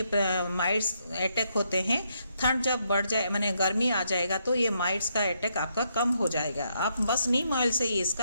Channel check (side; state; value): both; inverted; correlation -0.76